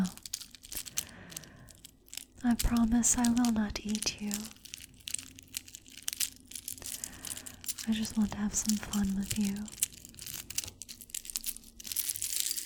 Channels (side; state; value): both; identical; correlation 1.00